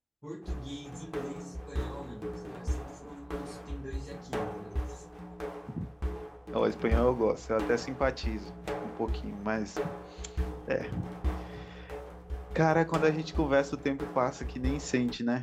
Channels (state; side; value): identical; both; correlation 1.00